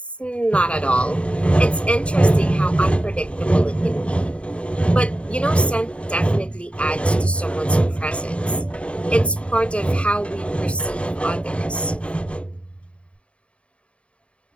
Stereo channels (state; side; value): late; right; 0.061 ms